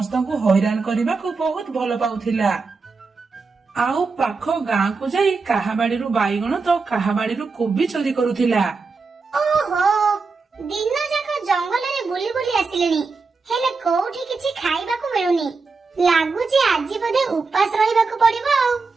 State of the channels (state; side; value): quieter; left; 4.4 dB